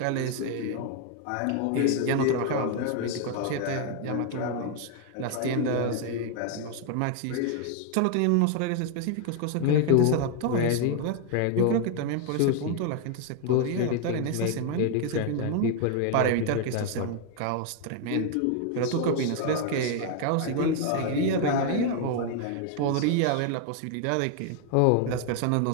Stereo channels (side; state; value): both; different; correlation 0.00